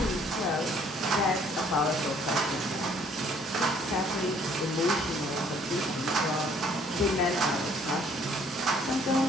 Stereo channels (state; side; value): normal; both; correlation 0.61